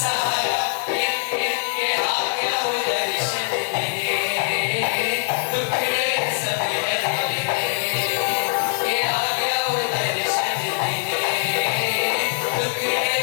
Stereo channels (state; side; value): silent; right; digital silence